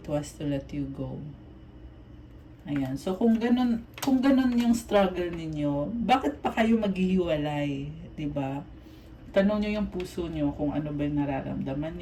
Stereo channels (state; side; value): identical; both; correlation 1.00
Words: was to let you go. Ayan. So, kung ganun yung struggle ninyo, bakit pa kayo maghihiwalay? Diba? Tanong nyo yung puso nyo kung ano ba yung nararamdaman